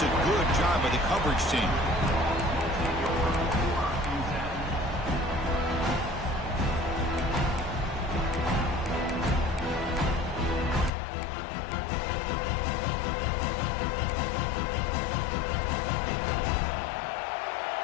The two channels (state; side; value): drops out; right; at 10.9 s